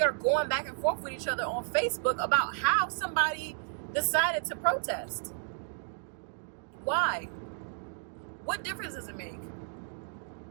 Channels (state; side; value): silent; left; 56 dB below the other